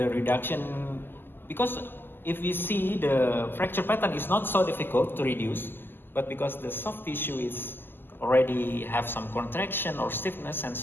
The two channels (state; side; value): late; right; 0.096 ms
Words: reduction? Because if we see the fracture pattern is not so difficult to reduce, but because the soft tissue is already have some contraction or stiffness and